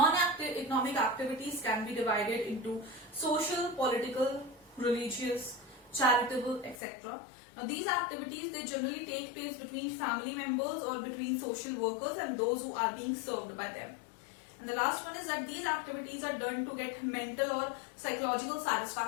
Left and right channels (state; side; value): drops out; right; at 6.8 s